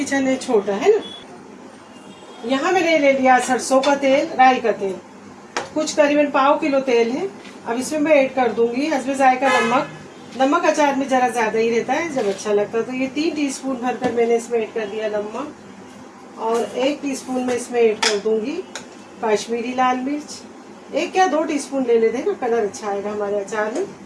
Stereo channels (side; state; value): both; identical; correlation 1.00